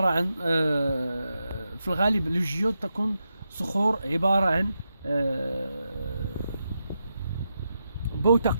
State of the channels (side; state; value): both; inverted; correlation -0.86